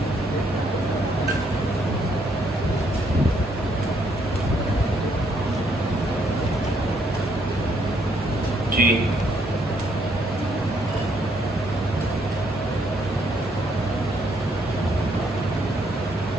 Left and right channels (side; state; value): both; normal; correlation 0.71